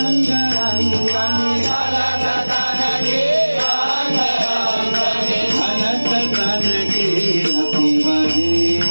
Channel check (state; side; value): inverted; both; correlation -1.00